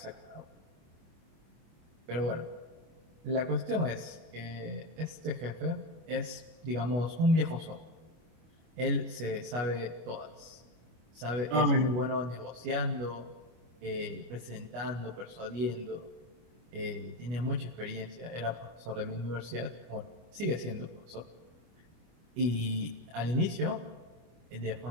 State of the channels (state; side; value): late; left; 25 ms